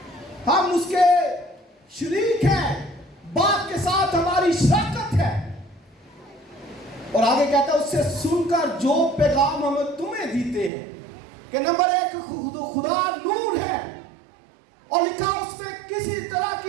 ہم اس کے شریک ہیں, باپ کے ساتھ ہماری شراکت ہے. اور آگے کہتا ہے اس سے سن کر جو پیغام ہم تمہیں دیتے ہیں کہ نمبر 1 خدا نور ہے, اور لکھا اس میں کسی طرح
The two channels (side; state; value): left; drops out; at 10.7 s